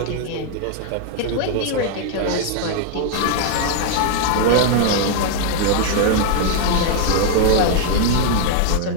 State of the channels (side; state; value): both; different; correlation 0.00